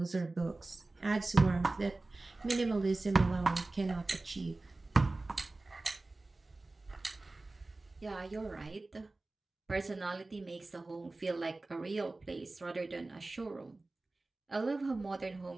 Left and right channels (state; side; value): quieter; left; 3.1 dB